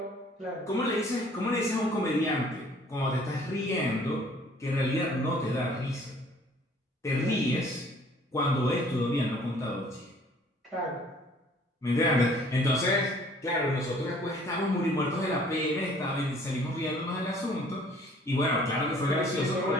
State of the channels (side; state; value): both; normal; correlation 0.55